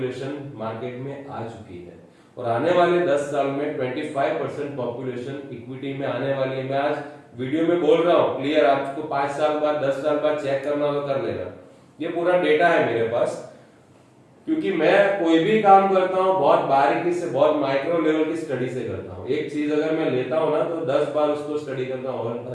मार्केट में आ चुकी है, और आने वाले 10 साल में 25% पॉपुलेशन इक्विटी में आने वाली है। मैं आज वीडियो में बोल रहा हूं क्लियर, आपको 5 साल बाद 10 साल बाद चेक करना हो तो कर लेना, ये पूरा डेटा है मेरे पास। क्योंकि मैं कोई भी काम करता हूं बहुत बारीकी से, बहुत माइक्रो लेवल की स्टडी से करता हूं। एक चीज अगर मैं लेता हूं ना तो 10 बार उसको स्टडी करता हूं,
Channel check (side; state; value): both; identical; correlation 1.00